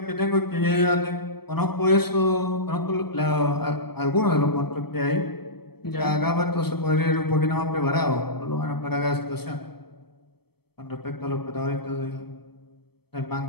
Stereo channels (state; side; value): late; right; 0.97 ms